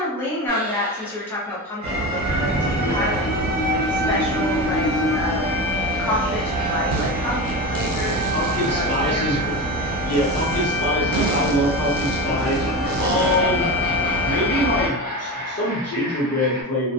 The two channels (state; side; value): normal; both; correlation 0.23